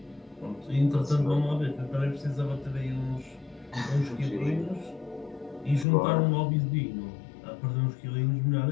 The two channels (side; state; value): right; drops out; at 5.9 s